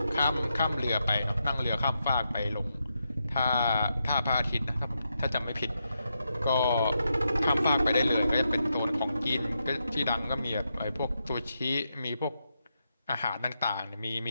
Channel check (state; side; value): inverted; both; correlation -0.84